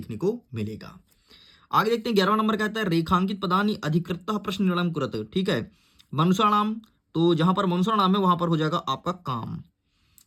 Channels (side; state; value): both; identical; correlation 1.00